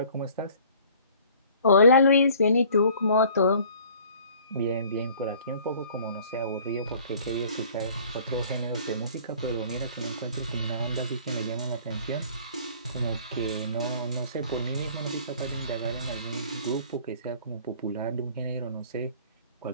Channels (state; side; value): inverted; both; correlation -0.52